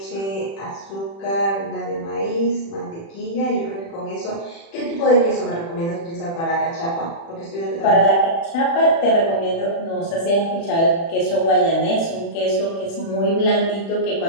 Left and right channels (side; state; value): right; late; 36 ms